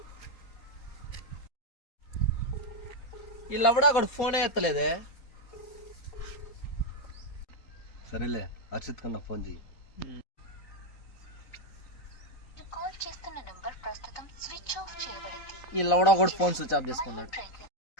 వీళ్ళవడా అక్కడ ఫోనే ఎత్తలేదే. సరేలే, హర్షిత్ కన్నా ఫోన్ చేయి. వీళ్ళవడా కూడా ఫోన్ స్విచ్ ఆఫ్ చేసుకున్నాడు.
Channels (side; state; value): right; late; 3.9 ms